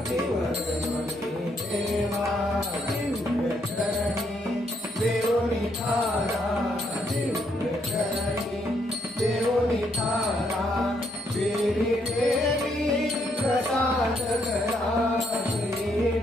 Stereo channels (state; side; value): normal; both; correlation 0.73